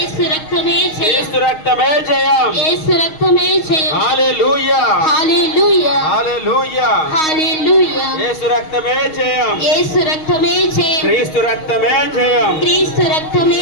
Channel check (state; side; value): late; right; 6.4 ms